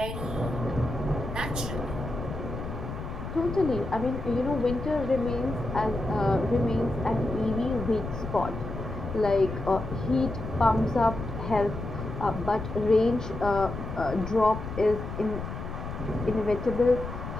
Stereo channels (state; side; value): noise; left; rumble, 7 dB below the sound